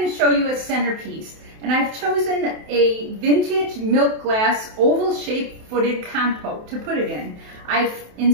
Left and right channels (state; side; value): late; left; 27 ms